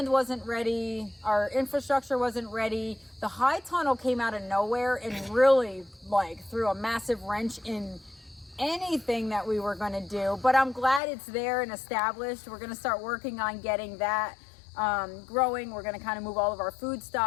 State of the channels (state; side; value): drops out; right; at 11.0 s